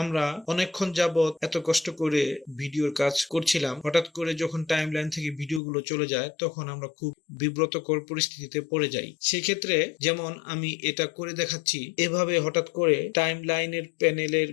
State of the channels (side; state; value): right; drops out; at 5.6 s